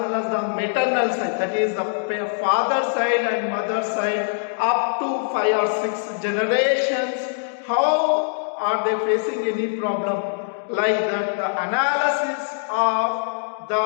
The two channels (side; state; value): right; silent; digital silence